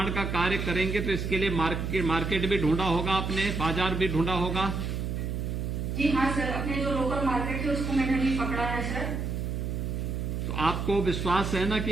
का कार्य करेंगे, तो इसके लिए मार्केट भी ढूंढा होगा आपने, बाजार भी ढूंढा होगा? जी हाँ सर, अपने जो लोकल मार्केट है उसको मैंने अभी पकड़ा है सर। तो आपको विश्वास है ना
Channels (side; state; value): right; noise; hum, 2 dB below the sound